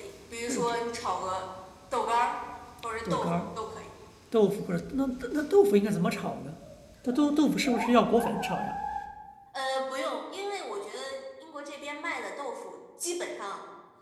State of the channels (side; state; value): both; identical; correlation 1.00